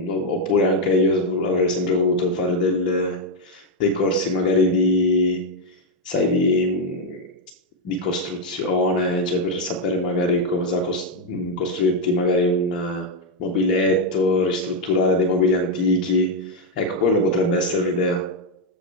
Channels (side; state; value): both; normal; correlation 0.02